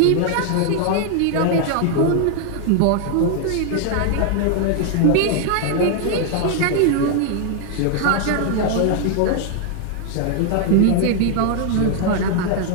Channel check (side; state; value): both; different; correlation 0.00